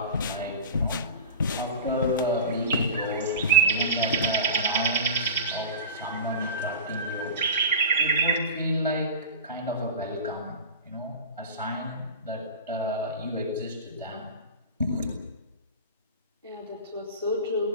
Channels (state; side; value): inverted; both; correlation -0.31